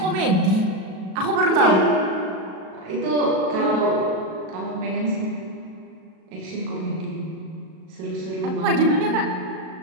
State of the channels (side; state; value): left; late; 37 ms